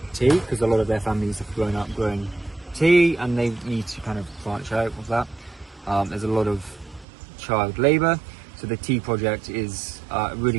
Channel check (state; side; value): drops out; left; at 7.1 s